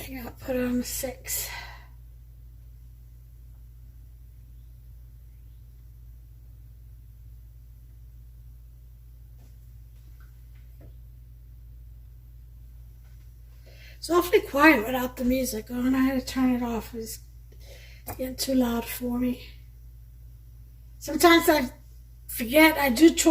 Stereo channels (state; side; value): identical; both; correlation 1.00